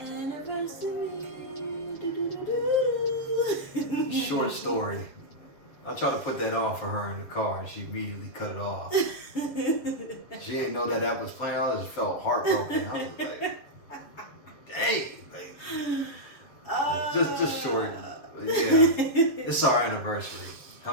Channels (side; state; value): right; late; 7.3 ms